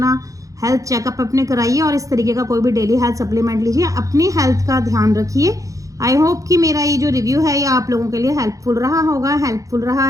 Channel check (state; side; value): late; left; 0.16 ms